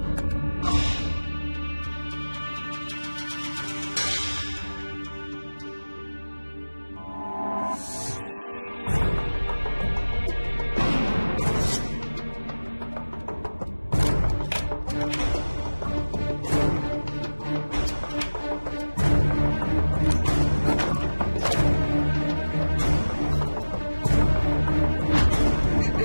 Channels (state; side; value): inverted; both; correlation -1.00